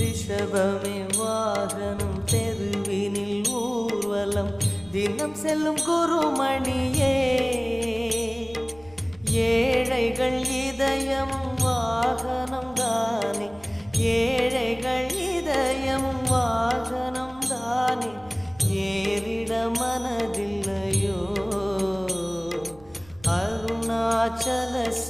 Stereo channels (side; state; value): right; noise; rumble, 24 dB below the sound